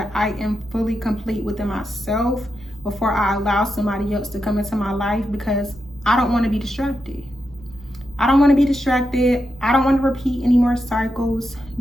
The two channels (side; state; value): both; normal; correlation 0.86